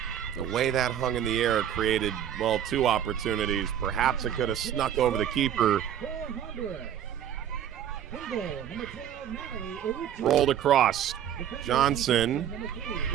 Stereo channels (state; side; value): quieter; left; 9.9 dB